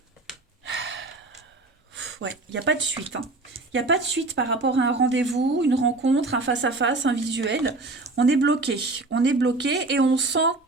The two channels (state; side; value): quieter; left; 3.2 dB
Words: Ouais, il n'y a pas de suite. Il n'y a pas de suite par rapport à un rendez-vous, une rencontre, un face-à-face, un visuel. On est bloqué. On est bloqué et on sent...